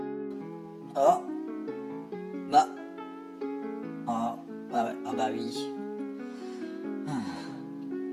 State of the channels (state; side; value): identical; both; correlation 1.00